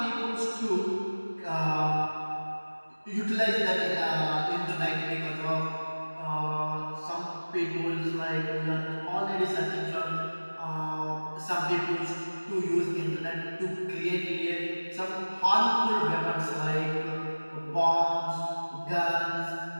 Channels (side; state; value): both; inverted; correlation -1.00